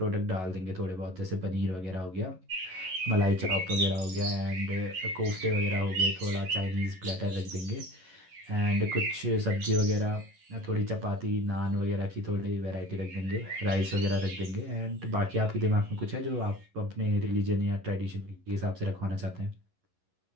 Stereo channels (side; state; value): left; late; 11 ms